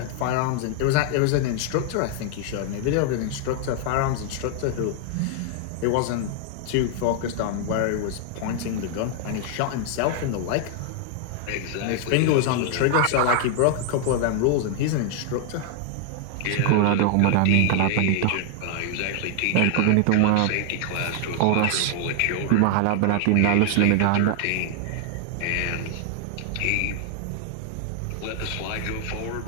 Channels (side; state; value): both; different; correlation 0.00